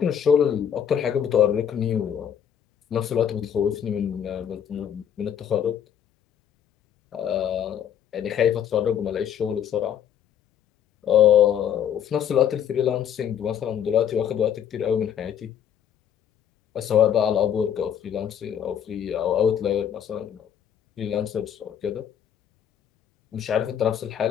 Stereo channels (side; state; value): right; quieter; 9.0 dB